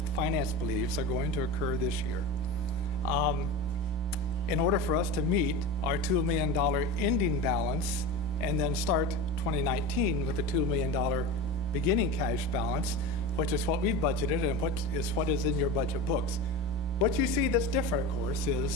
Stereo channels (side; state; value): both; normal; correlation 0.27